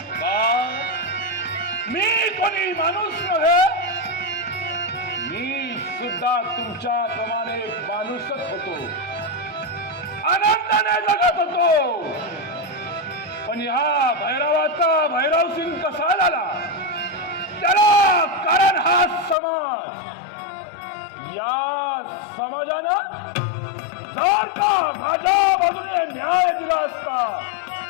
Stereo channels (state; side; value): drops out; right; at 19.4 s